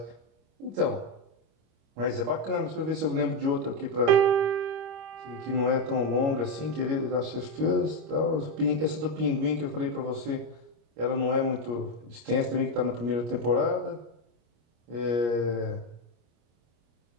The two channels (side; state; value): left; late; 25 ms